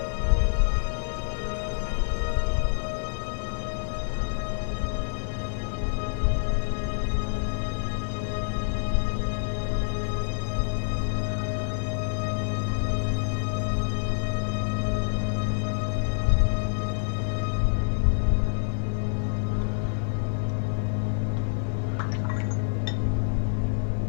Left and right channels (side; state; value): right; silent; 60 dB below the other